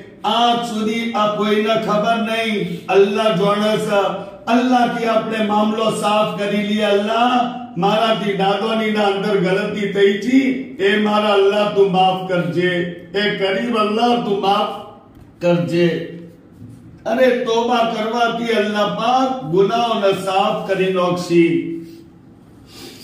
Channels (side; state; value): both; identical; correlation 1.00